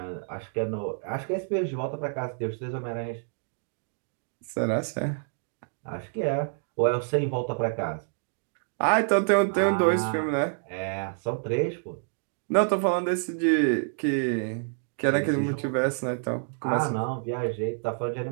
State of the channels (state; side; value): silent; left; digital silence